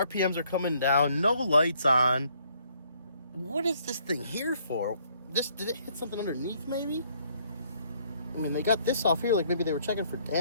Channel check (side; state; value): both; inverted; correlation -0.66